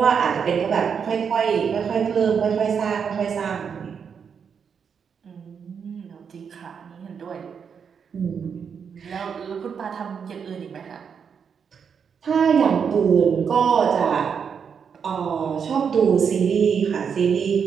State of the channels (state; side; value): quieter; left; 6.8 dB